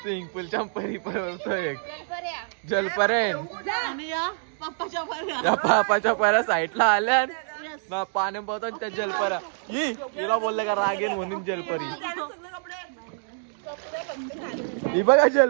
स्विमिंग पूलच्या परी पळतो एक जलपरेन. त्या पापाच्या पऱ्या साईडला आल्या ना पाणी पळतो त्या जलपऱ्या. हिला बोलले का रागेन म्हणून जलपरी. ही बघा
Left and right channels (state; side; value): silent; left; digital silence